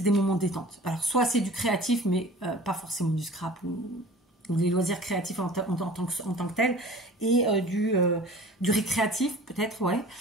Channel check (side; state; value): both; normal; correlation 0.43